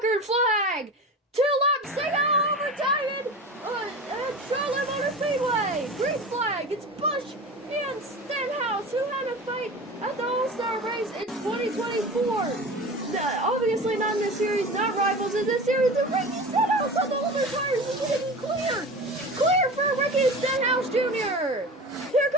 flag. 2 laps to go, overtime at Charlotte Motor Speedway. Green flag. It's Busch and Stenhouse who had a fight at the All-Star race in 2024. Obviously not in this series, not rivals in this series. The Ricky Stenhouse on the older tires is getting clear. Clear for Ricky Stenhouse Jr. Here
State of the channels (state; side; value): normal; both; correlation 0.33